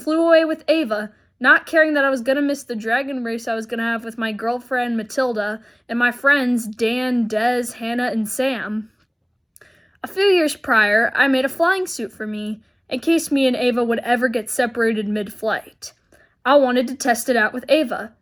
away with Ava, not caring that I was going to miss the dragon race I was going to have with my girlfriend Matilda and my friends Dan, Des, Hannah, and Sam. A few years prior, I made a flying suit for me, in case me and Ava would ever get separated mid-flight. I wanted to test it out with Ava.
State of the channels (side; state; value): both; identical; correlation 1.00